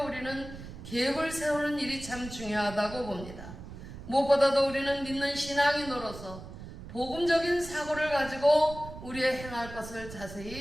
우리는 계획을 세우는 일이 참 중요하다고 봅니다. 무엇보다도 우리는 믿는 신앙이 늘어서 복음적인 사고를 가지고 우리의 행할 것을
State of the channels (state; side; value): noise; right; rumble, 13 dB below the sound